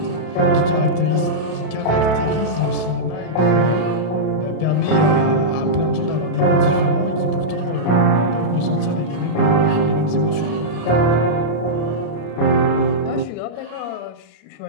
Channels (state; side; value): late; right; 32 ms